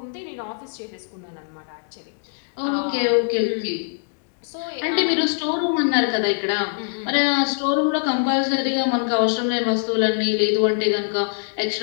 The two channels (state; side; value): silent; right; digital silence